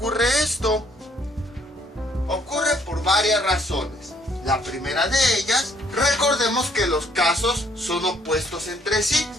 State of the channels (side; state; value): both; normal; correlation 0.65